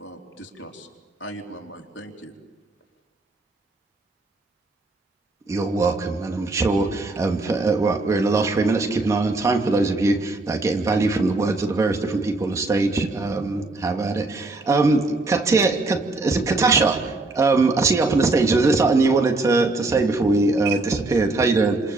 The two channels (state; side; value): quieter; left; 3.0 dB